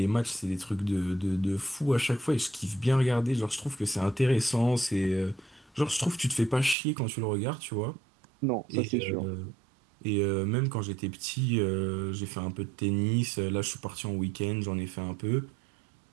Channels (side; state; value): left; drops out; at 6.8 s